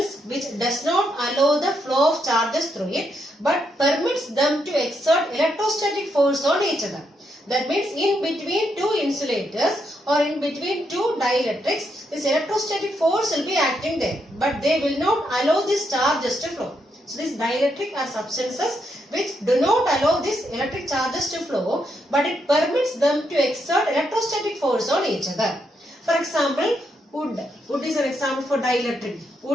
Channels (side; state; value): both; normal; correlation 0.79